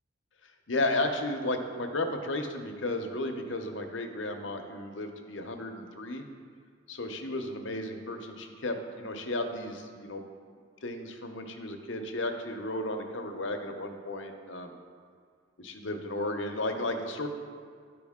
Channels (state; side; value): normal; both; correlation -0.11